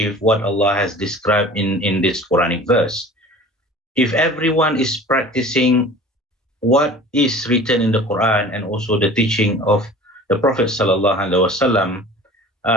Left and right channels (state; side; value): normal; both; correlation 0.42